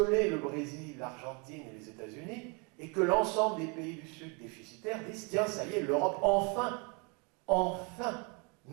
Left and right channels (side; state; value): left; quieter; 32.5 dB